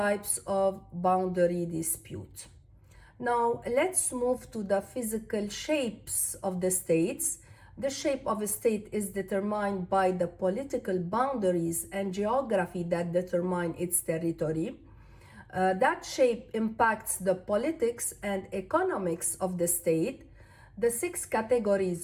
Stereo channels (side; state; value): both; identical; correlation 1.00